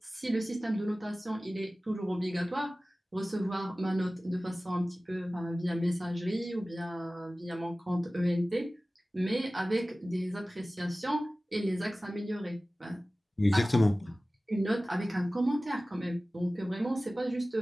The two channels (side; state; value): both; normal; correlation 0.97